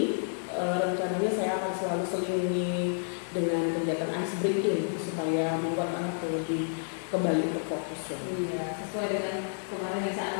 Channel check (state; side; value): silent; right; 58 dB below the other